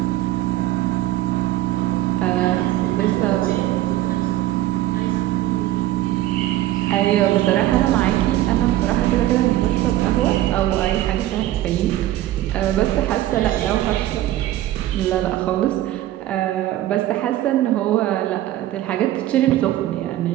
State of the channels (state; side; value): quieter; left; 14.4 dB